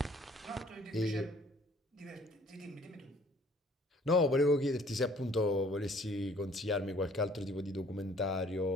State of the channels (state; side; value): normal; both; correlation 0.57